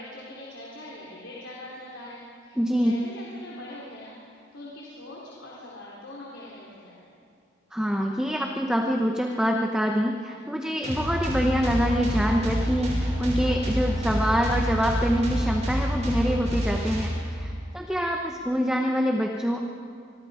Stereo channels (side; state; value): both; normal; correlation 0.87